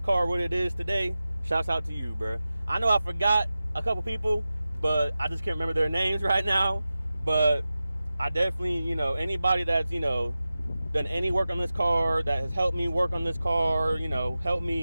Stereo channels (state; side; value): inverted; both; correlation -0.94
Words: car what it is today. Shouts out to you, bro. I know I forgot a couple people, but I just can't remember their names right now. But I definitely, anybody that's done any work on this car, that has helped me work on this car, helped